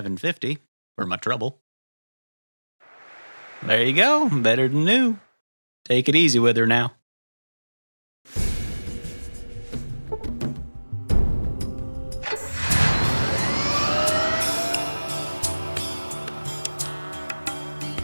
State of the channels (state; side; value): inverted; both; correlation -1.00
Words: for my trouble. There you go, better than new. Take it easy with her now.